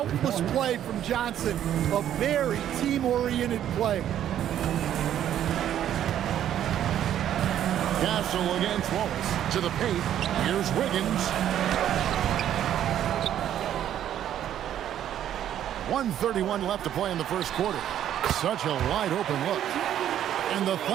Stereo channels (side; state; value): left; quieter; 10.8 dB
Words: play from Johnson. A very team-oriented play. Castle against Wallace. To the paint. Here's Wiggins. 1:31 left to play in the first quarter. Such a wide open look. And the